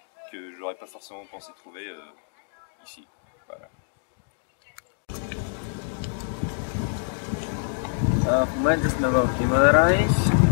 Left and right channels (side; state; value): right; silent; digital silence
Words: que j'aurais pas forcément pensé trouver ici. Voilà. В момента сме в Гимарães